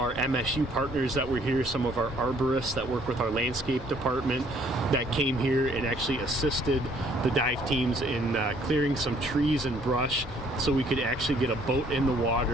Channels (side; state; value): both; normal; correlation 0.62